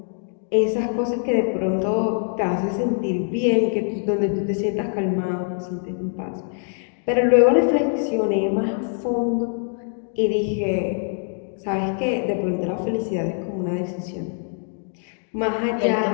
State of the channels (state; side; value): silent; right; 58 dB below the other